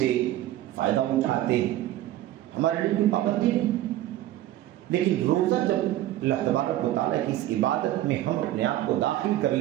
فائدہ اٹھاتے ہیں، ہمارے لیے کوئی پابندی نہیں۔ لیکن روزہ جب اللہ تبارک و تعالیٰ کی اس عبادت میں ہم اپنے آپ کو داخل کر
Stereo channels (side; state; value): left; quieter; 14.1 dB